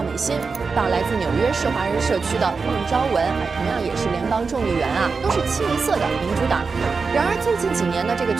美心，到来自纽约市华人社区的孟昭文，同样也是联邦众议员啊，都是清一色的民主党。然而最近几年呢，这个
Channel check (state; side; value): quieter; left; 4.7 dB